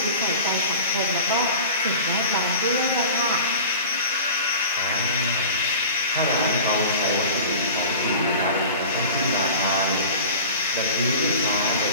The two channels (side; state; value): both; inverted; correlation -0.37